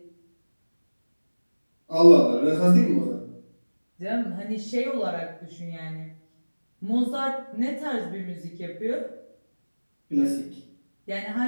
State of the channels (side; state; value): both; inverted; correlation -1.00